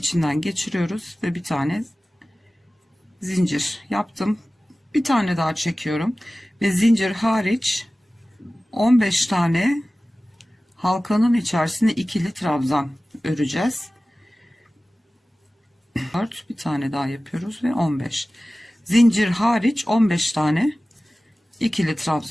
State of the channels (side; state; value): both; normal; correlation 0.97